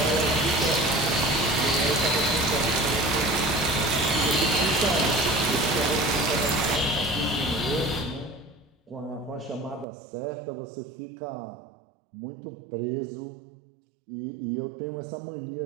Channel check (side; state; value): left; drops out; at 9.9 s